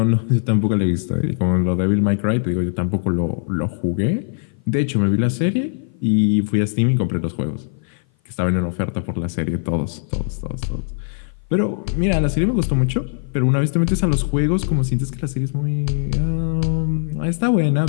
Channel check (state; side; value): silent; right; 56 dB below the other